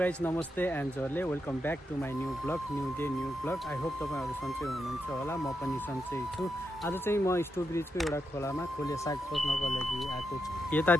नमस्ते and जरले welcome back to my new vlog new day new vlog I hope तपाईँहरू सन्चै हुनुहुन्छ होला म पनि सन्चै छु। आज चाहिँ म स्टोब्रिजको एउटा खोलामा खोले साग खोज्नको लागि आएको छु।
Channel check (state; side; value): normal; both; correlation 0.84